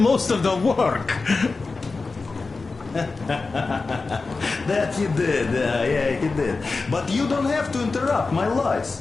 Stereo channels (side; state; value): right; quieter; 4.0 dB